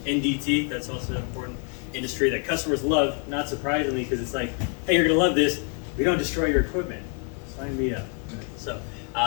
NDT, that's also an important industry that customers love, not surprisingly, because it's like, hey, you're gonna love this, we don't destroy your equipment. Sign me up. So,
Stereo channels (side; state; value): right; quieter; 39.5 dB